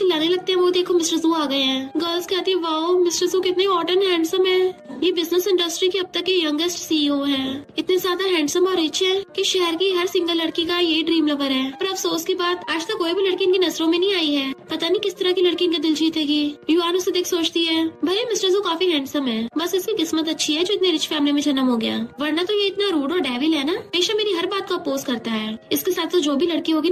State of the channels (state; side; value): identical; both; correlation 1.00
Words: लगते हैं वो देखो मिस्टर जू आ गए हैं। गर्ल्स कहती है वाओ मिस्टर जू कितने हॉट एंड हैंडसम है, ये बिजनेस इंडस्ट्री के अब तक के यंगेस्ट सीईओ है, इतने ज्यादा हैंडसम और रिच है कि शहर की हर सिंगल लड़की का ये ड्रीम लवर है। पर अफसोस की बात आज तक कोई भी लड़की इनकी नजरों में नहीं आई है, पता नहीं किस तरह की लड़की इनका दिल जीतेगी। युआन उसे देख सोचती है भले मिस्टर जू काफी हैंडसम है, बस इसकी किस्मत अच्छी है जो इतने रिच फैमिली में जन्म हो गया, वरना तो ये इतना रूड और डेविल है ना, हमेशा मेरी हर बात को अपोज करता है। इसके साथ तो जो भी लड़की होगी